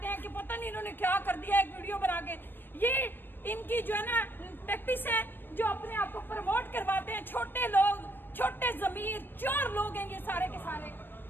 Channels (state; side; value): late; right; 0.095 ms